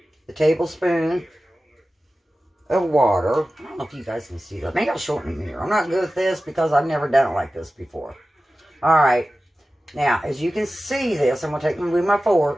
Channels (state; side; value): normal; both; correlation 0.95